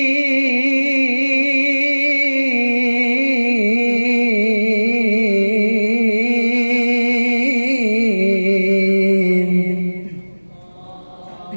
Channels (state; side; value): inverted; both; correlation -1.00